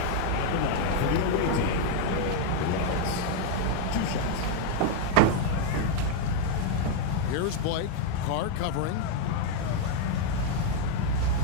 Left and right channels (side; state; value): both; different; correlation 0.00